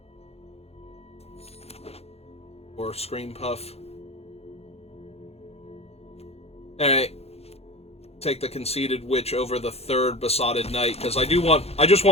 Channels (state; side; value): late; right; 0.30 ms